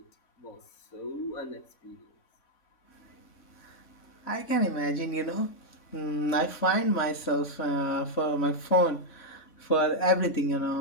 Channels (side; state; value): right; late; 3.5 ms